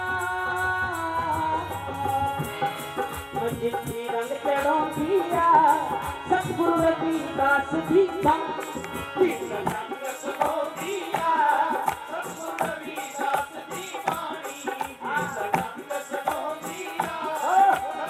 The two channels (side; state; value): both; identical; correlation 1.00